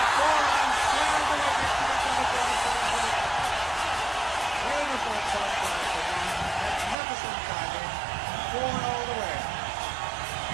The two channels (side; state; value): left; drops out; at 7.0 s